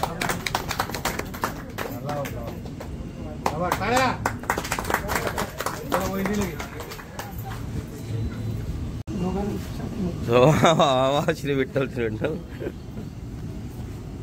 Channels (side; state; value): both; identical; correlation 1.00